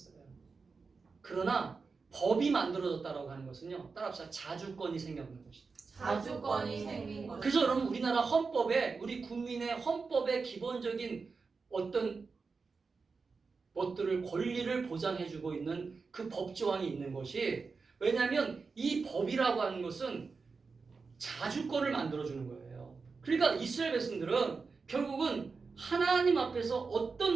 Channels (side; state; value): left; quieter; 4.6 dB